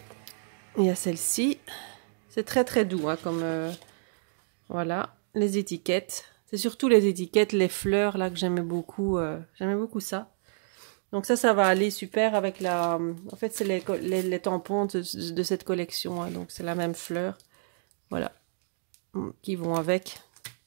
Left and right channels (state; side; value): silent; left; digital silence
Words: Il y a celle-ci. C'est très très doux, hein, comme... voilà, les étiquettes. C'est surtout les étiquettes, les fleurs, là, que j'aimais beaucoup. J'aimais beaucoup ça. Donc ça va aller super avec la... En fait, c'est les tampons de cette collection. Hein, donc c'est la même fleur. Voilà. Qui vont avec.